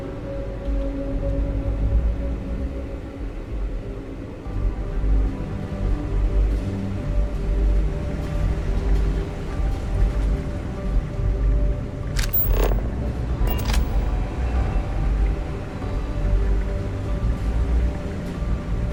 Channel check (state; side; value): identical; both; correlation 1.00